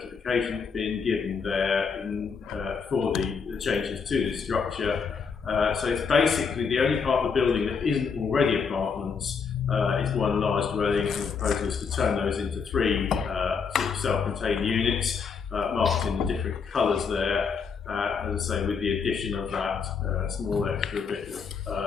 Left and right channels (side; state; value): right; quieter; 5.8 dB